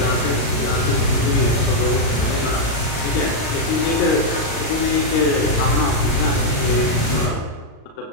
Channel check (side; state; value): right; late; 36 ms